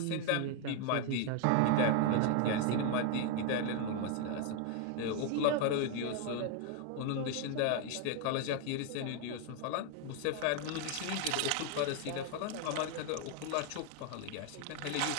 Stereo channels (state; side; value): different; both; correlation 0.01